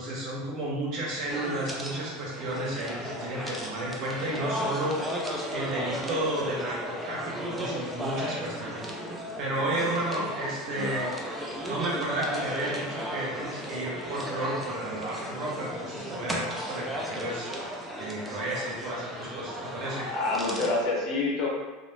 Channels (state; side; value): normal; both; correlation 0.30